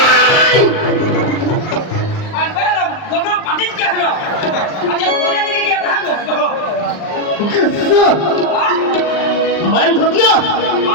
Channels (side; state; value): right; late; 39 ms